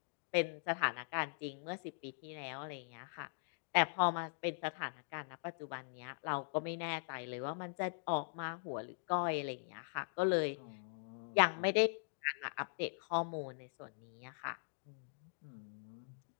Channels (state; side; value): silent; right; digital silence